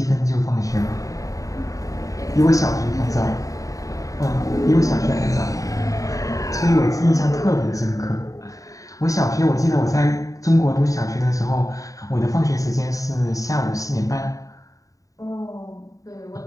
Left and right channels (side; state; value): right; late; 0.16 ms